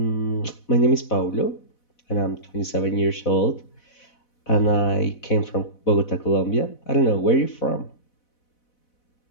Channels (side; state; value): right; late; 4.1 ms